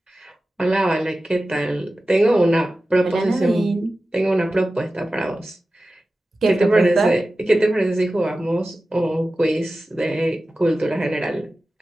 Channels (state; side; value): normal; both; correlation 0.95